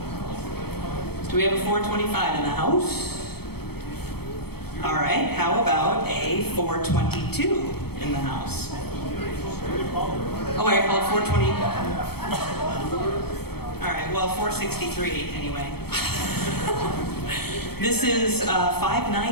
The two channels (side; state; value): right; late; 0.96 ms